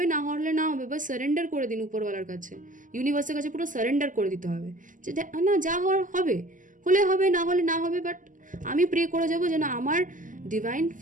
না হওয়ার হলে না হবে, বাস সারেন্ডার করে দিন উপরওয়ালার কাছে, ইউনিভার্সের কাছে পুরো সারেন্ডার করে দিতে হবে যে না, যা হওয়ার হবে, হলে হবে, না হলে না হবে। বাট আমি প্রে করে যাবো যেন আমার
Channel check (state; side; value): late; left; 0.38 ms